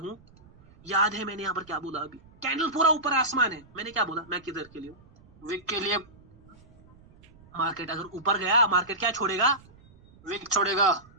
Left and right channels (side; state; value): right; noise; rumble, 26 dB below the sound